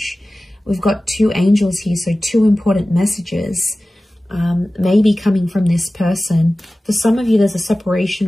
We've got two angels here, so two important messages maybe coming from this person. For some of you, there's a separation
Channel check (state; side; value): normal; both; correlation 0.96